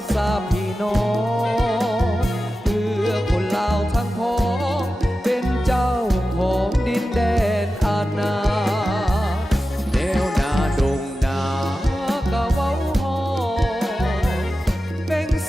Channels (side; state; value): both; normal; correlation 0.93